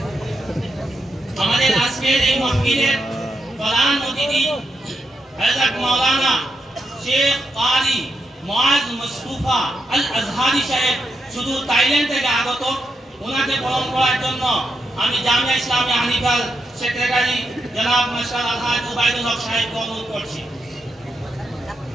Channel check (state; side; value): normal; both; correlation 0.84